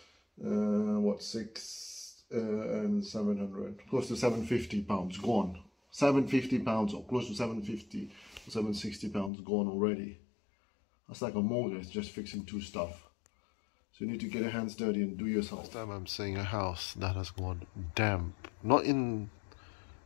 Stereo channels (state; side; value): drops out; right; at 9.3 s